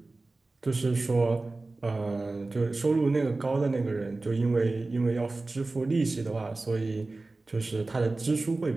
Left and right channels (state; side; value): quieter; left; 3.3 dB